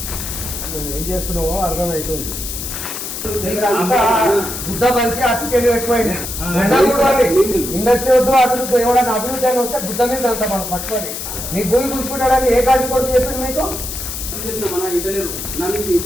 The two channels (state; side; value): noise; left; hiss, 6 dB below the sound